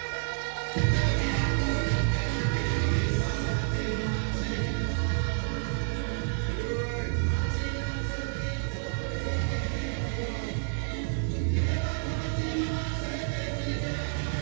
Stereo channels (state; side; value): silent; left; 58 dB below the other